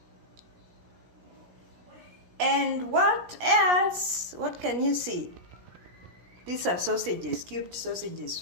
and what else? What can you see? These are sausages, cubed sausages,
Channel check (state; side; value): late; left; 17 ms